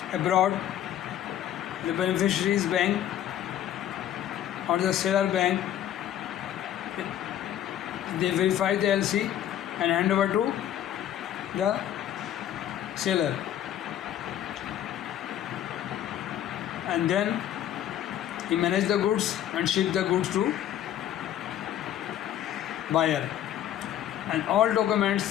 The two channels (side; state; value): right; quieter; 11.3 dB